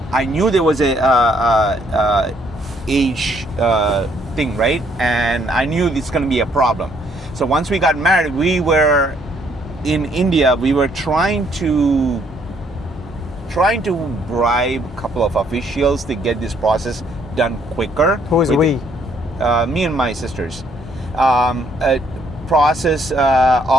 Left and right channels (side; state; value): both; normal; correlation 0.67